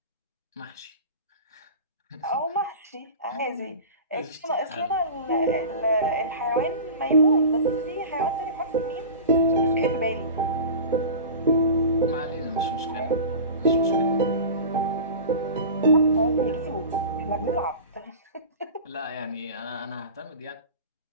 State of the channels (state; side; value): inverted; both; correlation -0.33